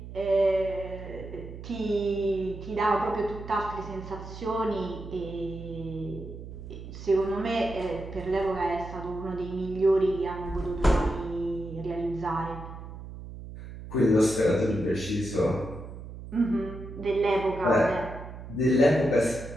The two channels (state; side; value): noise; right; hum, 12 dB below the sound